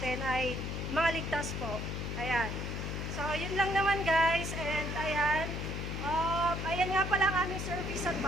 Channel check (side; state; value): left; noise; hum, 4 dB below the sound